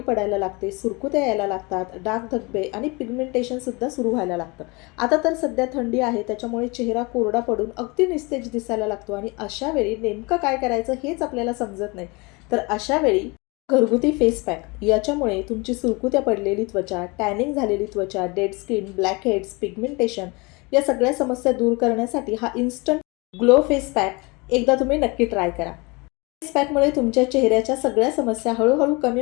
लागते, सुरकुत्या यायला लागतात, डाग धब्बे आणि पिगमेंटेशनसुद्धा सुरू व्हायला लागतं. आता तर सध्या थंडी आहे, त्याच्यामुळे चेहरा कोरडा पडून अगदी निस्तेज दिसायला लागतो आणि अशा वेळी नेमकं काय करायचं हेच आपल्याला समजत नाही. तर अशा वेळी घरगुती फेस पॅक याच्यामुळे तुमची सुरकुत्या पडलेली त्वचा, टॅनिंग झालेली त्वचा, dead skin, black heads, pigmentation या सगळ्या समस्या दूर करण्यासाठी हा इन्स्टंट ग्लो फेस पॅक एकदा तुम्ही नक्की ट्राय करा. फेस पॅकमुळे तुमच्या चेहऱ्याच्या सगळ्या समस्या हळूहळू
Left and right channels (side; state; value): right; quieter; 26.9 dB